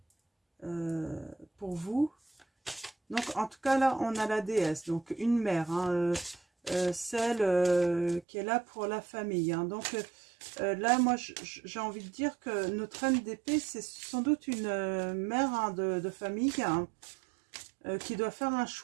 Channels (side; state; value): left; drops out; at 8.2 s